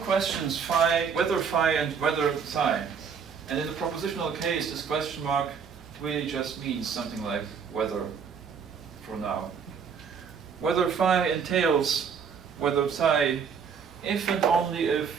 phi, whether phi and whether psi. And in the propositional case, this question mark really just means something like whether for now. Whether phi entails whether psi, if and only if,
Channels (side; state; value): left; quieter; 6.5 dB